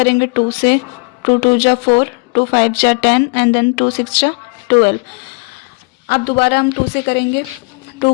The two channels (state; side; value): quieter; right; 31.7 dB